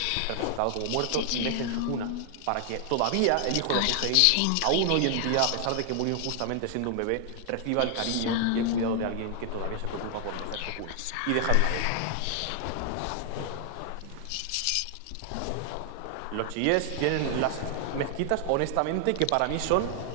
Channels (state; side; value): different; both; correlation 0.00